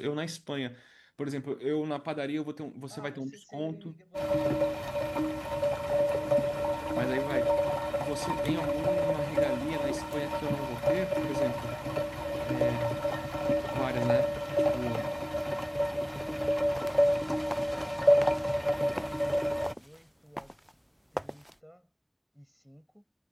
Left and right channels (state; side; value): identical; both; correlation 1.00